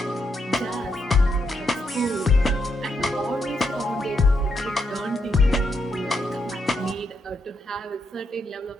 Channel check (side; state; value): both; normal; correlation 0.79